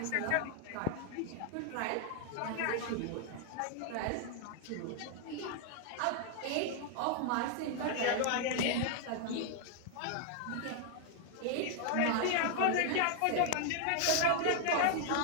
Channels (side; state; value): both; different; correlation 0.00